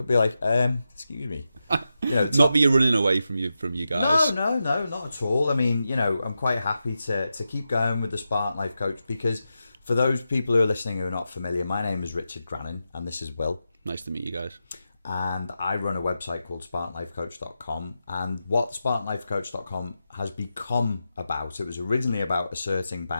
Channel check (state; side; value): inverted; both; correlation -0.89